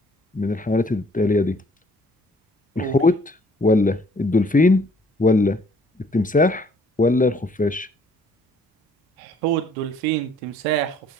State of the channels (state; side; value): normal; both; correlation 0.60